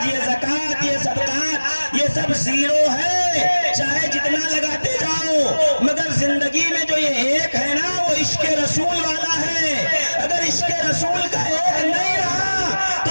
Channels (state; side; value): inverted; both; correlation -1.00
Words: یہ زکوٰۃ، یہ صدقات، یہ سب 0 ہے، چاہے جتنا لگاتے جاؤ، مگر زندگی میں جو یہ 1 ہے نا وہ عشق رسول والا ہے۔ اگر عشق رسول کا 1 نہیں رہا تو